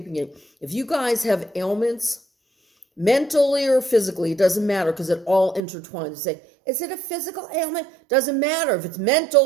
it. If you guys have ailments, mentally or physically, it doesn't matter because it all intertwines. You say, is it a physical ailment? Doesn't matter. If it's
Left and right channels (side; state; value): left; drops out; at 5.6 s